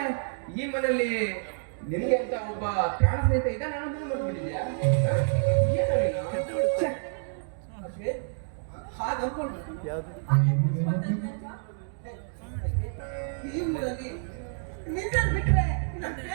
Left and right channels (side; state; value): left; silent; digital silence